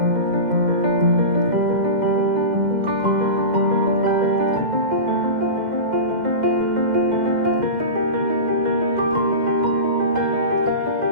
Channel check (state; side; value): late; left; 2.1 ms